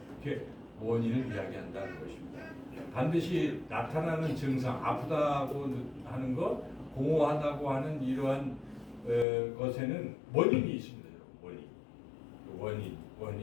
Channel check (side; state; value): right; drops out; at 9.2 s